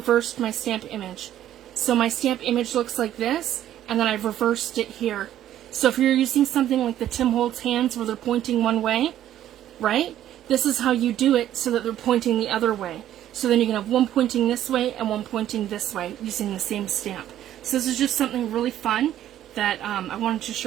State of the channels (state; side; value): quieter; left; 11.9 dB